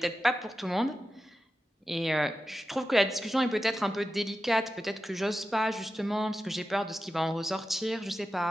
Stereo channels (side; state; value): both; normal; correlation 0.92